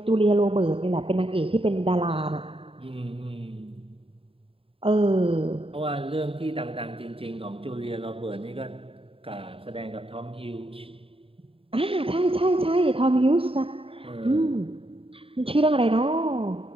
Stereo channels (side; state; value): left; late; 0.27 ms